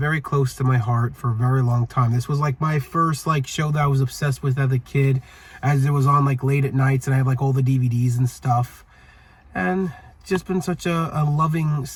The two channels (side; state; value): both; identical; correlation 1.00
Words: close to my heart for a very long time. This was like my first show that I was obsessed with as a kid, as it was on late at nights, and I had all the DVDs and stuff. And it's just been such a loving